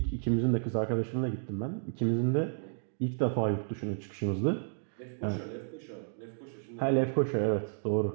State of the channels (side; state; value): left; silent; digital silence